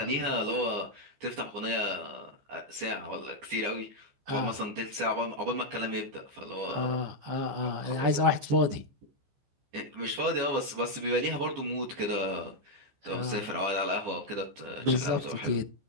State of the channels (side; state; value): left; late; 15 ms